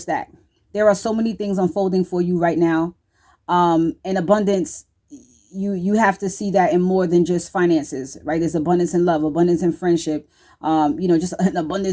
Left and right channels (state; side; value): identical; both; correlation 1.00